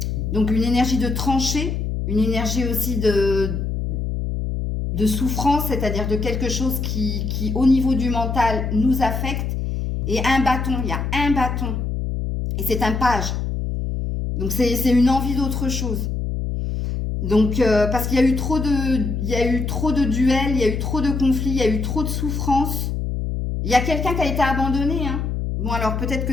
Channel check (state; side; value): noise; left; hum, 2 dB below the sound